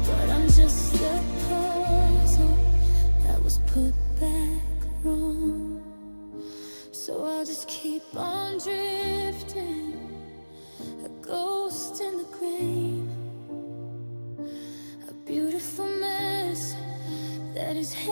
but I'm just a puzzle that was put back wrong. So I'll just keep on drifting, a ghost in the grain, a beautiful mess that is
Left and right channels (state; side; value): inverted; both; correlation -1.00